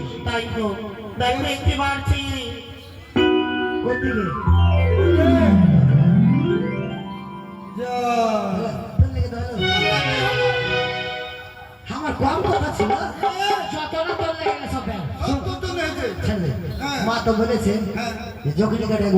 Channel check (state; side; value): identical; both; correlation 1.00